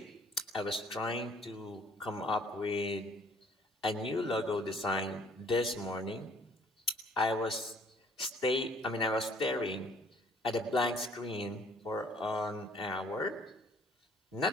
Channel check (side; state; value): both; normal; correlation 0.58